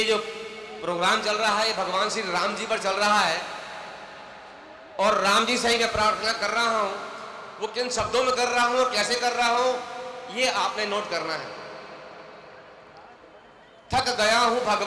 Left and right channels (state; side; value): identical; both; correlation 1.00